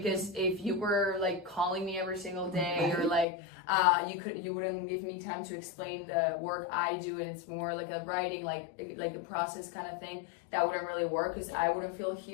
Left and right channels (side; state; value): right; drops out; at 3.2 s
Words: if you were like calling me every single day or like you wouldn't give me time to explain the work I do, and it's more like a writing like a process kind of thing, that wouldn't really work, because I wouldn't feel